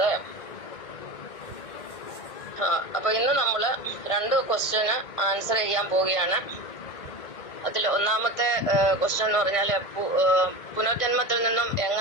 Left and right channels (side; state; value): right; late; 1.5 ms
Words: അപ്പൊ ഇന്ന് നമ്മള് 2 ക്വസ്റ്റ്യന് ആൻസർ ചെയ്യാൻ പോവുകയാണ്. അതിൽ ഒന്നാമത്തെ ക്വസ്റ്റ്യൻ എന്ന് പറഞ്ഞാൽ പുനർജന്മത്തിൽ നിന്നും